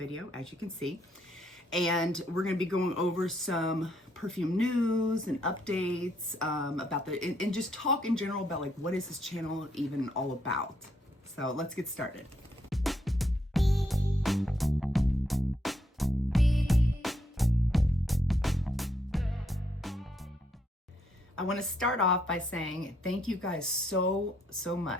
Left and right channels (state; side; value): normal; both; correlation 0.75